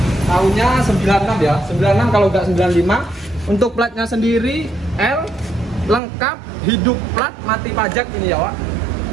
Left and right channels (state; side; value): drops out; left; at 6.0 s